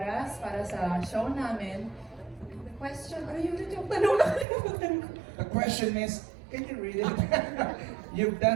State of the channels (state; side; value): drops out; left; at 4.5 s